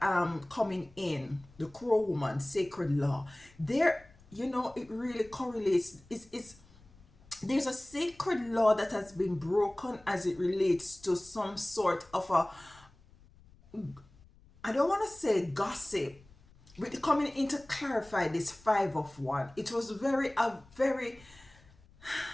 coming in, the crow woman, sacred law, there, it really correlates. It's there's a sacred law that has been broken as it relates to some sort of a, I don't want to say gossip, but coming in to clarify this Five of Wands, it was very,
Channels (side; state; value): left; noise; rumble, 26 dB below the sound